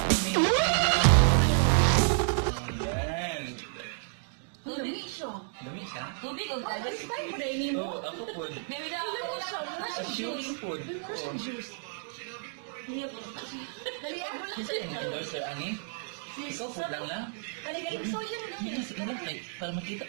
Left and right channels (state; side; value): silent; left; digital silence